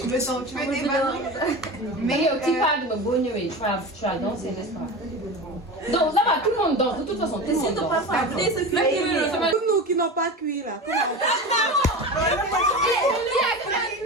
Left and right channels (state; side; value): normal; both; correlation 0.28